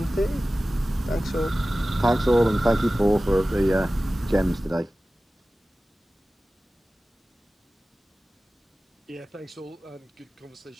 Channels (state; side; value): normal; both; correlation 0.96